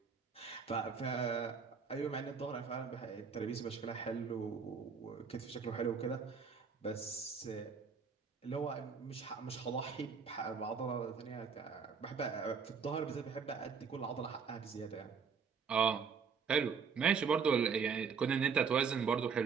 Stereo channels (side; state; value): left; quieter; 5.9 dB